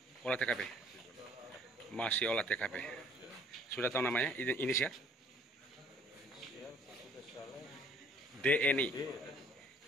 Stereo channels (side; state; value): both; normal; correlation 0.57